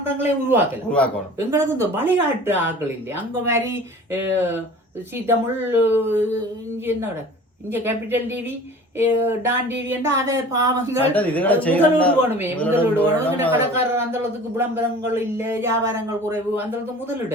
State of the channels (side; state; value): both; normal; correlation 0.43